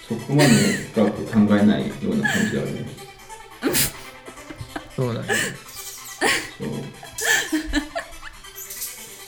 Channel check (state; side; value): identical; both; correlation 1.00